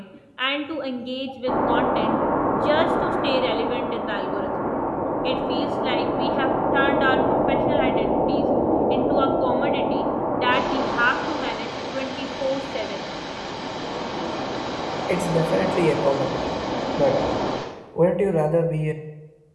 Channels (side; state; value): both; identical; correlation 1.00